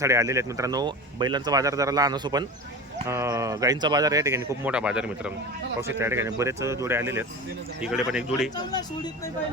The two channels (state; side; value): normal; both; correlation 0.30